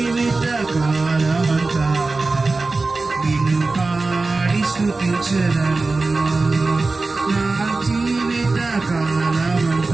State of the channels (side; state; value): left; quieter; 3.6 dB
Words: కాలమంతా నిన్ను పాడి స్తుతించెదను, నా జీవిత